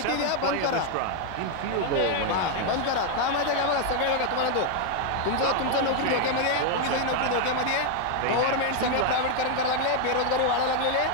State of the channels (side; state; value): both; different; correlation 0.00